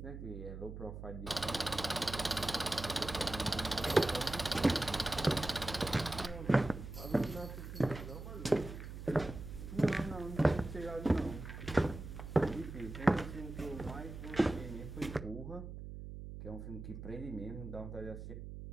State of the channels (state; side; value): noise; right; hum, 10 dB below the sound